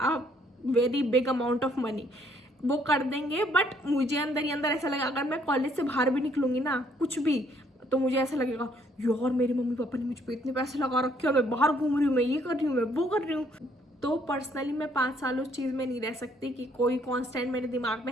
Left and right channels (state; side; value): normal; both; correlation 0.66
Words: very big amount of money, वो कर देंगे। बट मुझे अंदर ही अंदर ऐसा लगेगा, अगर मैं कॉलेज से बाहर भी निकलूंगी ना कुछ भी, तो मुझे ऐसा लगेगा यार मेरे मम्मी पापा ने मुझ पर इतने पैसे लगा रखे, मैं बाहर घूम रही हूँ, मैं ये कर रही हूँ, मैं वो कर रही हूँ। तो पर्सनली मैं 5 साल उस चीज़ में नहीं रह सकती कि कोई कांस्टेंट मेरे दिमाग में